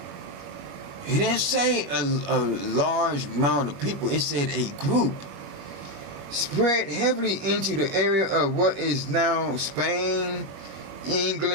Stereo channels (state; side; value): late; left; 21 ms